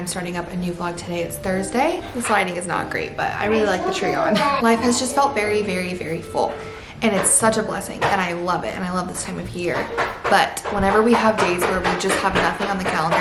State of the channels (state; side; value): identical; both; correlation 1.00